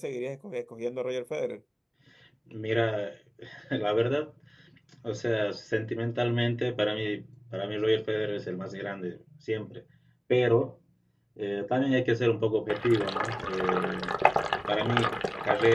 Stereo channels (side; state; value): both; identical; correlation 1.00